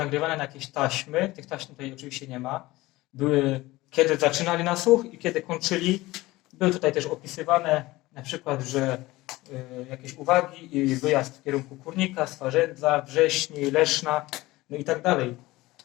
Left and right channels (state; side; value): quieter; right; 19.2 dB